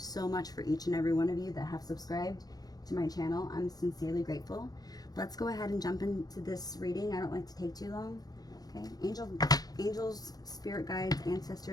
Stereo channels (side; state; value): right; late; 0.19 ms